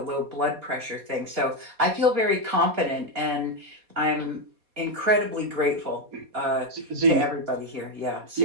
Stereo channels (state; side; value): late; left; 4.2 ms